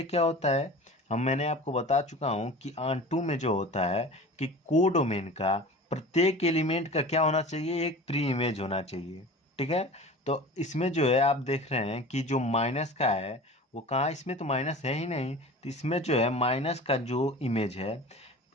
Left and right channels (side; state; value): both; normal; correlation 0.37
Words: क्या होता है, मैंने आपको बता चुका हूँ कि ऑन टू में जो होता है कि कोडोमेन का प्रत्येक एलिमेंट का क्या होना चाहिए, एक प्री इमेज होना चाहिए। ठीक है, तो इसमें जो है आप देख रहे हैं कि जो माइनस का है वो कहाँ, इसमें तो माइनस है ही नहीं, तो इसमें जो है माइनस का जो इमेज है